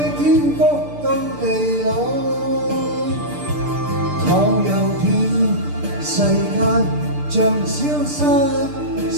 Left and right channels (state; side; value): late; left; 6.7 ms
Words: 天福到地老。倘有天世間像消失